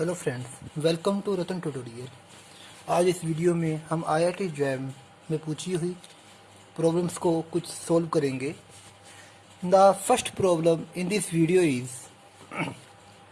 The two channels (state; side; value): identical; both; correlation 1.00